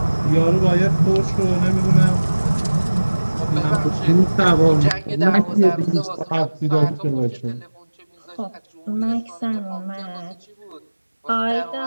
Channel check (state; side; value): inverted; both; correlation -1.00